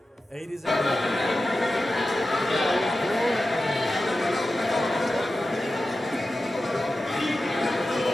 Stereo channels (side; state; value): both; normal; correlation 0.93